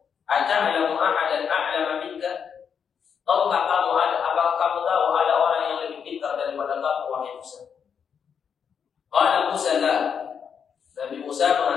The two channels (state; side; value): quieter; right; 7.1 dB